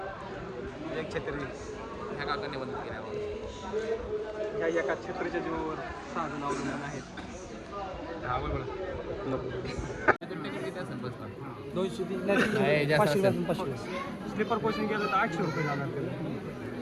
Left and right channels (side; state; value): both; identical; correlation 1.00